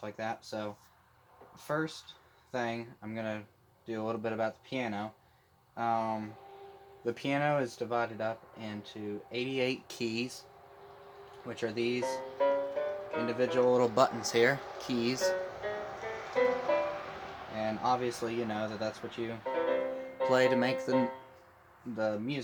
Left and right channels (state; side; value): identical; both; correlation 1.00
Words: like that. So, first thing, I'm going to do a little bit about the piano. Um, the piano is divided up into 88 keys, which are these individual little buttons here, keys. And obviously, you know that that's what you play to make the